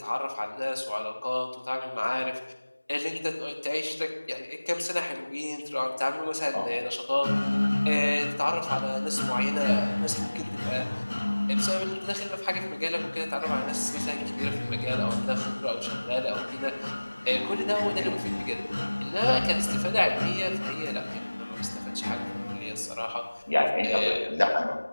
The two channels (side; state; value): both; inverted; correlation -1.00